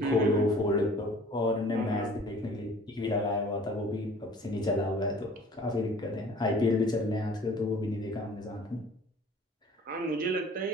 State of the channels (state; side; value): normal; both; correlation 0.49